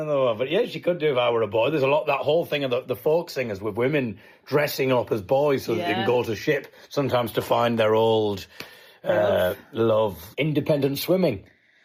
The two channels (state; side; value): identical; both; correlation 1.00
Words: yeah, she could do if I were a boy. There's a lot, that whole thing of the folk singers with women dressing up as boys so that they can go to ship, sometimes to find their old love. Independent swimming.